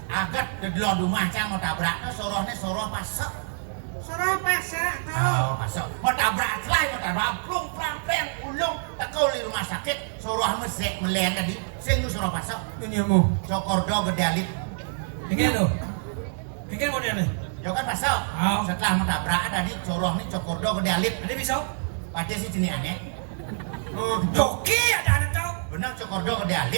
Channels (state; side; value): silent; left; digital silence